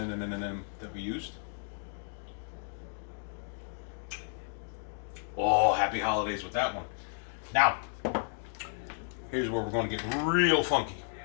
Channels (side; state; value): right; silent; 56 dB below the other